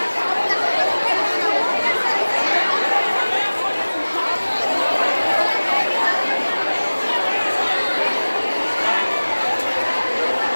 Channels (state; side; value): inverted; both; correlation -1.00